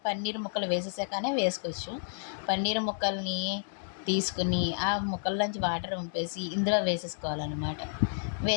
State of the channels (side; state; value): right; silent; digital silence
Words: పన్నీర్ ముక్కలు వేసేసాకనే వేసుకోవచ్చు. పన్నీర్ ముక్కల్ని తీసుకుని ఆ ముక్కల్లోంచి వాటర్ వంపేసి ఇందులో వేసేసుకోవాలన్నమాట.